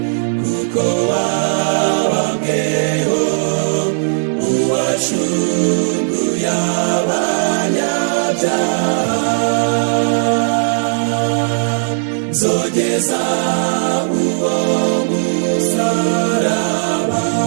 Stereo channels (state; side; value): silent; left; digital silence